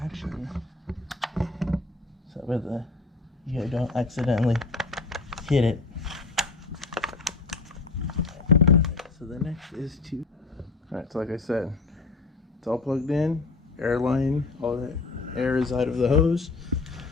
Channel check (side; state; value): right; quieter; 3.8 dB